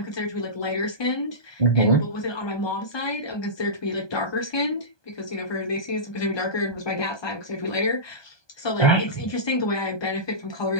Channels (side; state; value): right; late; 1.2 ms